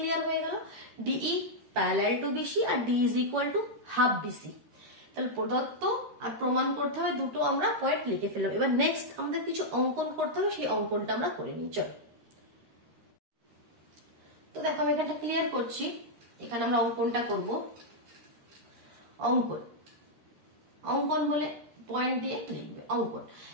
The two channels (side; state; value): left; late; 13 ms